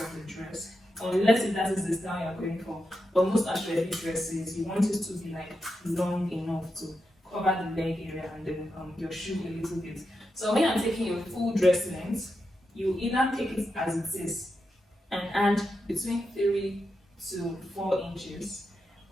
the dress, unless if that is the style you're going for. But most actually dresses, you want it to be like long enough to cover the leg area and then your shoe a little bit. So when you're taking your full dress length, you either take it as it is and add between 3 to 4 inches,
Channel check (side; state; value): both; normal; correlation 0.87